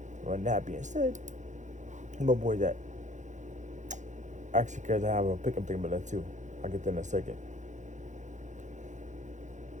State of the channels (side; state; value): left; late; 0.35 ms